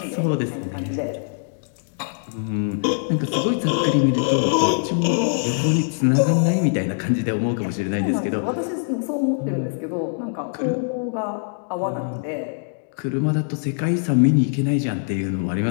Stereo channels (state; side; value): silent; right; digital silence